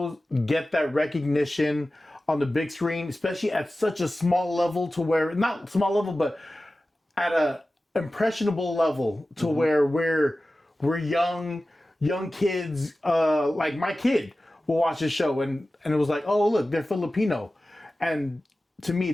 get that recognition on the big screen, especially at such a small level, to where not small level, but at a impressionable level, to where we're young kids, like my kid will watch this show and it was like, oh look, they're Filipino, and to me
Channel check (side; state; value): both; normal; correlation 0.95